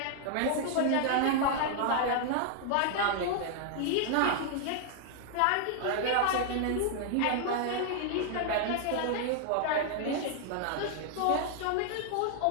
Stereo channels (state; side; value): different; both; correlation 0.00